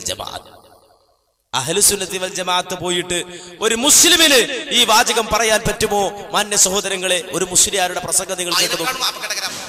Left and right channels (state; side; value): identical; both; correlation 1.00